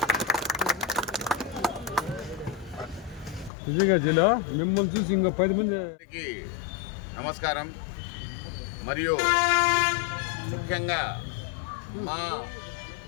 నిజంగా జిల్లా మిమ్మల్ని చూసి ఇంకా 10 మందికి నమస్కారం. మరియు ముఖ్యంగా మా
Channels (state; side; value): drops out; right; at 3.5 s